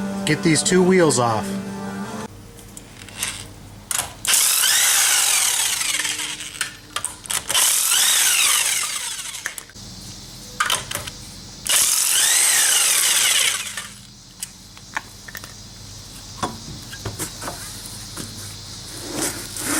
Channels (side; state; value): both; identical; correlation 1.00